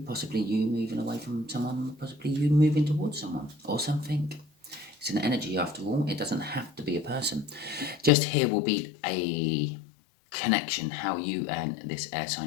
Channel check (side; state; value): right; drops out; at 8.1 s